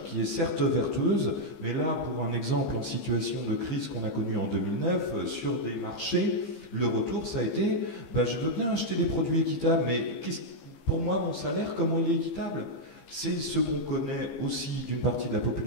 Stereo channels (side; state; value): right; late; 15 ms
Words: qui est certes vertueuse, mais là, pour un exemple en situation de crise qu'on a connue en 2009, sur des marchés, le retour, ça a été je veux bien acheter des produits équitables, mais pour moi, mon salaire, comment il est équitable? C'est ce qu'on connaît aussi d'une partie de la